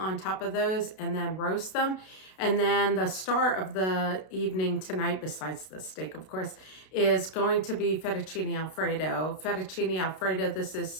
top of those and then roast them. And then the star of the evening tonight, besides the steak, of course, is going to be fettuccine Alfredo. Fettuccine Alfredo, this is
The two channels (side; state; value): right; late; 32 ms